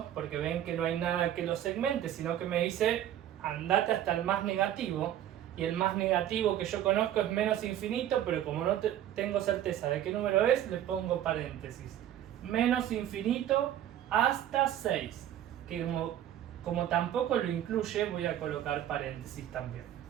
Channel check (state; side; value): quieter; left; 11.5 dB